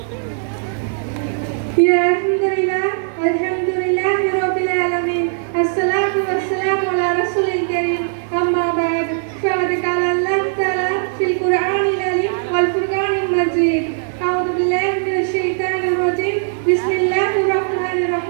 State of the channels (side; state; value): left; silent; digital silence